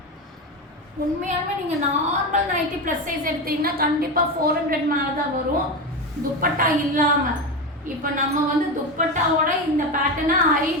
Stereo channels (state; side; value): normal; both; correlation 0.18